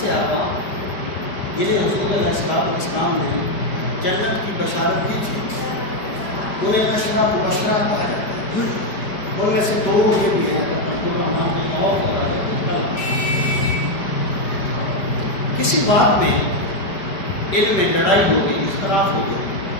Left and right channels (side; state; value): right; late; 5.1 ms